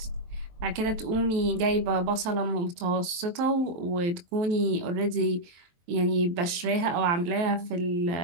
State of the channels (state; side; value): late; left; 23 ms